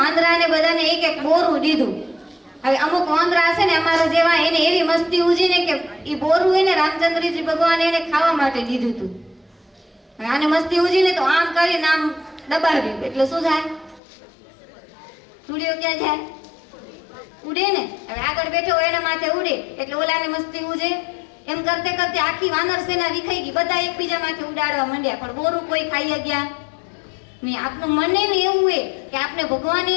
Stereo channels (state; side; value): drops out; right; at 14.0 s